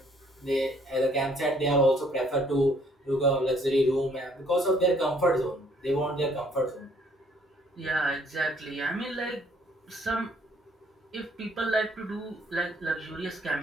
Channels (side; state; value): both; normal; correlation 0.63